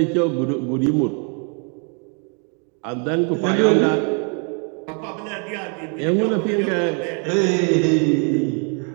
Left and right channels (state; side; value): quieter; left; 38.9 dB